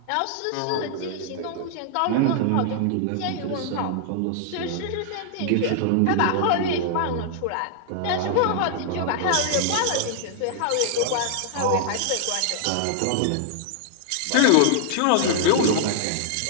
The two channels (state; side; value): different; both; correlation -0.01